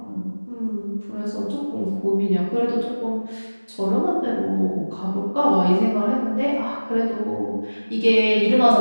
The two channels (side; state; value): both; inverted; correlation -1.00